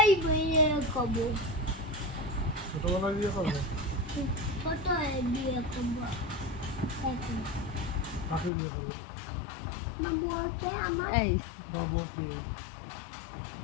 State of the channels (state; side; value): drops out; right; at 8.5 s